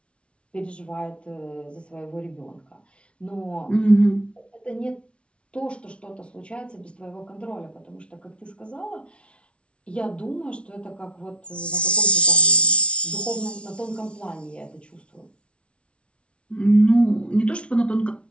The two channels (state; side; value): late; right; 0.060 ms